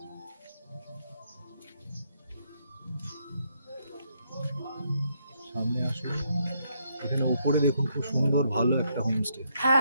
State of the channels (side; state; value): both; inverted; correlation -0.75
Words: সামনে আসুন, এখানে উপরে দেখুন খুব সুন্দর ভালো একটা হোমস্টে, হ্যাঁ